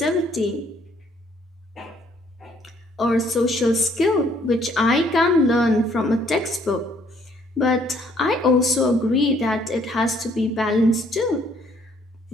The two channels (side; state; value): both; normal; correlation 0.64